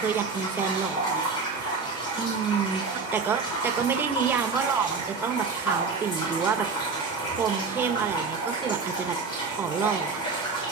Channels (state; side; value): quieter; left; 4.7 dB